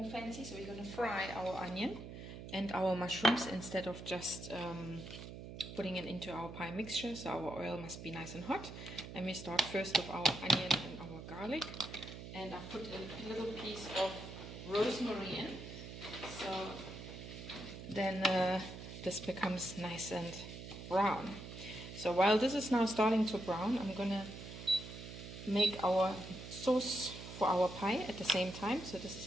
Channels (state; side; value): noise; right; hum, 11 dB below the sound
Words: fancy, so we're going to fry our onion and our mushrooms instead of just putting it into our pie mixture. So our oil must be nice and hot, and we start first with our onion and our garlic, and I put a little piece of rosemary in, so then this becomes nice and brown. So while this is now starting to brown, I'm gonna make our sauce for our pie at the same time. So this